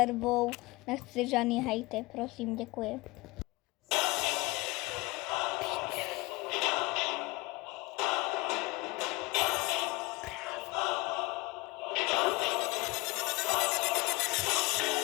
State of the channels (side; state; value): right; quieter; 23.3 dB